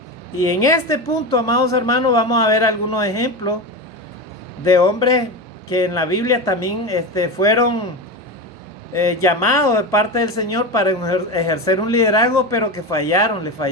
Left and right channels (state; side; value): normal; both; correlation 0.21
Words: Y en este punto, amados hermanos, vamos a ver algunos ejemplos de hombres que en la Biblia también fueron llamados de parte del Señor para ejercer un liderazgo, pero que le